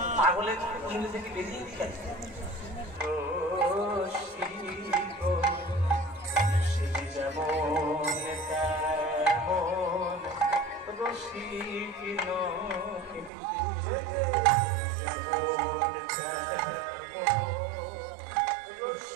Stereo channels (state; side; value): drops out; left; at 13.3 s